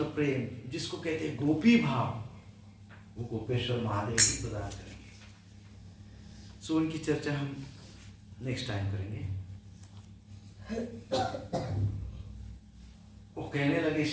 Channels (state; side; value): identical; both; correlation 1.00